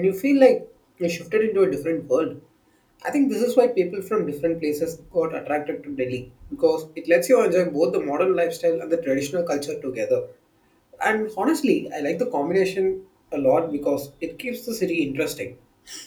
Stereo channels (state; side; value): identical; both; correlation 1.00